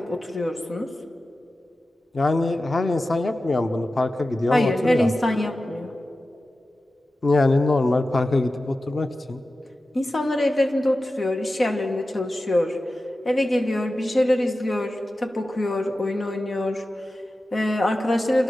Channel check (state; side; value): normal; both; correlation 0.94